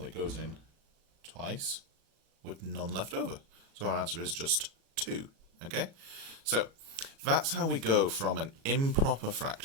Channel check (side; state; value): left; late; 36 ms